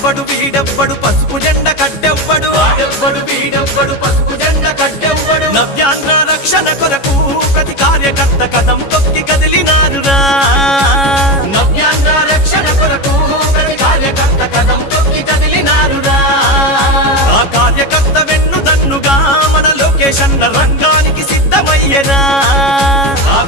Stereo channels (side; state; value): right; late; 14 ms